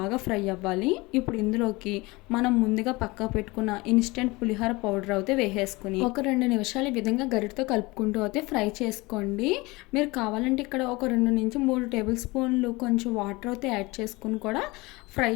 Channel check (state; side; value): quieter; right; 23.1 dB